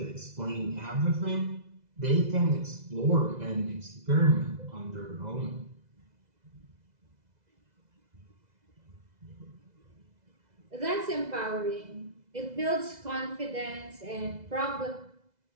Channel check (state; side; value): late; left; 2.0 ms